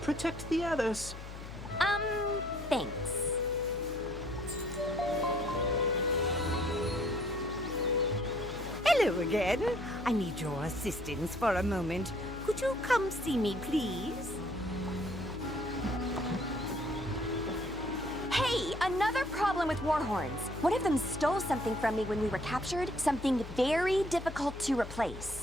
protect the others. Thanks. Hello again. I need your assistance for a moment. Could you come see me, please? Hey, another problem with Warhorns. One of them stole something from me when we were captured, something very difficult to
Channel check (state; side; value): noise; left; hum, 11 dB below the sound